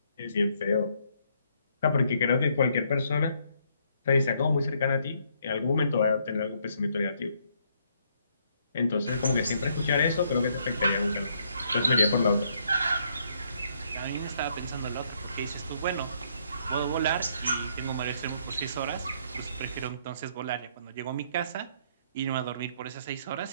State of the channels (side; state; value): both; inverted; correlation -0.70